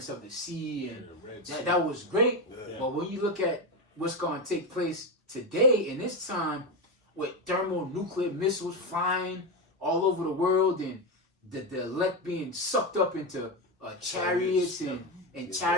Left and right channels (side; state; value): both; normal; correlation 0.13